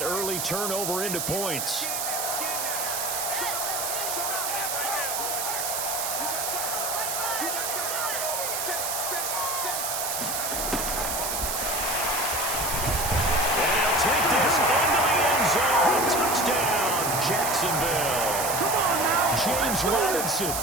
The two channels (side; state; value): right; noise; hiss, 1 dB below the sound